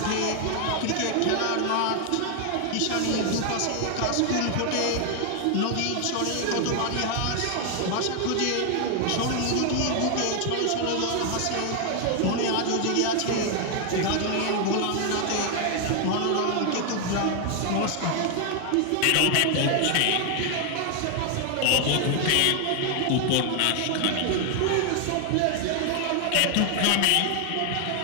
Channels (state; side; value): different; both; correlation 0.00